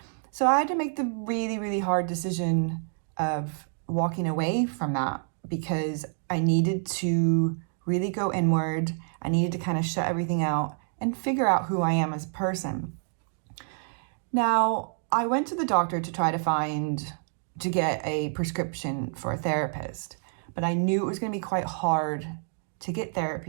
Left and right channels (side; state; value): left; silent; 59 dB below the other